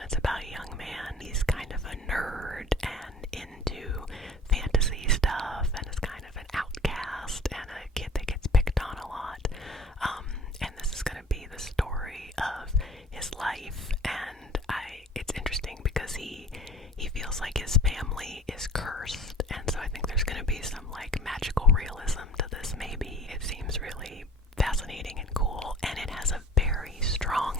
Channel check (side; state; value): both; normal; correlation 0.47